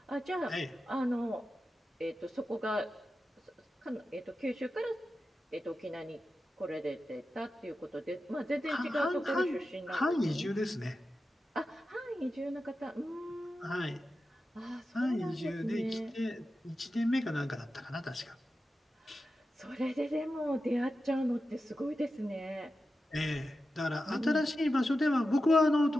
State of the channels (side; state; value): both; normal; correlation 0.91